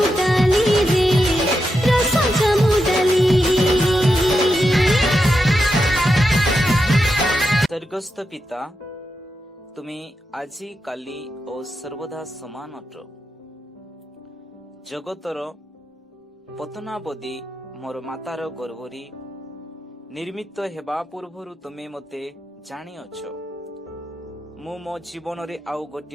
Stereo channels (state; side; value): normal; both; correlation 0.86